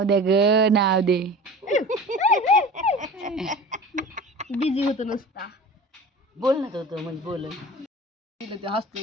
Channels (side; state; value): both; normal; correlation 0.37